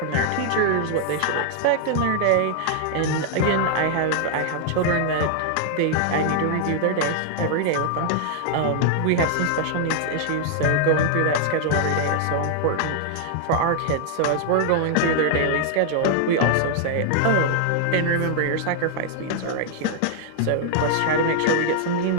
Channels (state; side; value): different; both; correlation 0.00